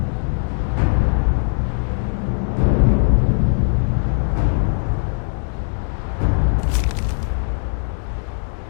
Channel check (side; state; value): right; silent; digital silence